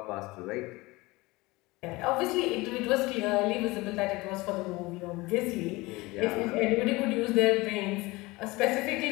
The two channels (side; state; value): right; quieter; 22.0 dB